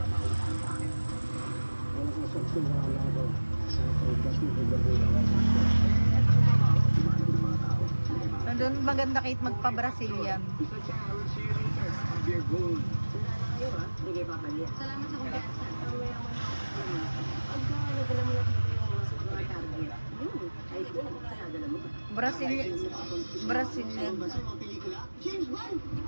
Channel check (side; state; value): both; inverted; correlation -1.00